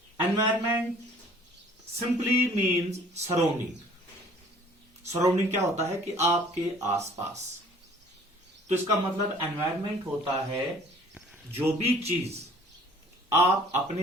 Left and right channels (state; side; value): normal; both; correlation 0.53